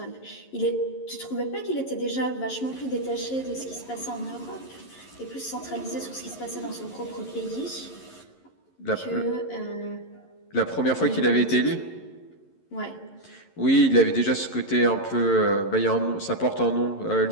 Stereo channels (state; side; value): late; right; 11 ms